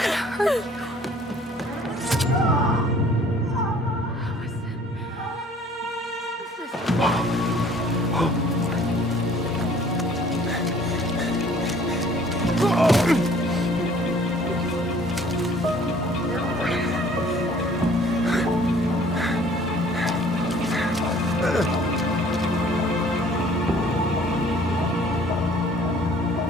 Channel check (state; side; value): normal; both; correlation 0.54